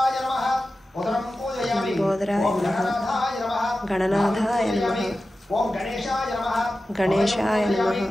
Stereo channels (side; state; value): both; normal; correlation 0.94